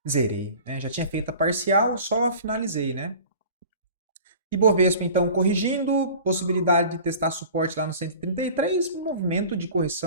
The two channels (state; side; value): inverted; both; correlation -0.42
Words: Zerei, né? Já tinha feito a parcial, só finalizei, né? Ibovespa, então, corrigindo, possibilidade de testar suporte lá no 133, um movimento de